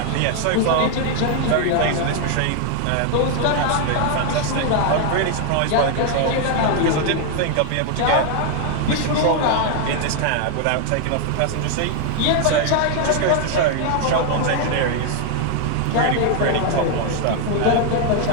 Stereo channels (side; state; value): both; different; correlation 0.00